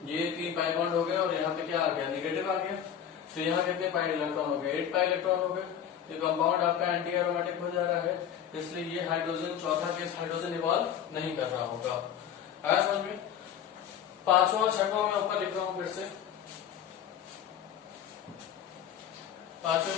ये 3 पाई बॉन्ड हो गया और यहाँ पे क्या आ गया, नेगेटिव आ गया, तो यहाँ कितने पाई इलेक्ट्रॉन हो गए, 8 पाई इलेक्ट्रॉन हो गए, तो कंपाउंड आपका एंटी एरोमेटिक हो जा रहा है, इसलिए ये हाइड्रोजन चौथा केस हाइड्रोजन इवॉल्व नहीं कर रहा होगा। आया समझ में। 5वां 6वां मैं ऊपर लिख रहा हूं फिर से, 5वें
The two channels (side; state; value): right; quieter; 9.2 dB